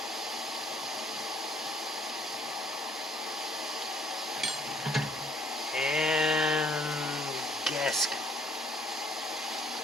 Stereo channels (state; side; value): normal; both; correlation 0.62